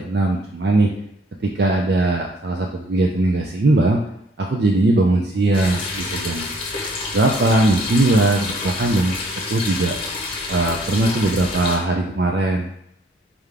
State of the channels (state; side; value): normal; both; correlation 0.62